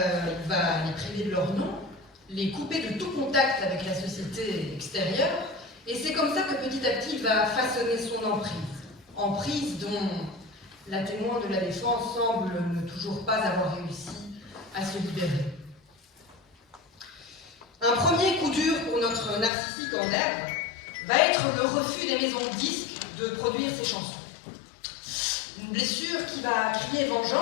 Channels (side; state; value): right; drops out; at 19.5 s